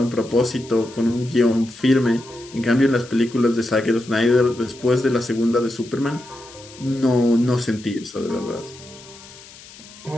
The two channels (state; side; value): noise; left; hiss, 20 dB below the sound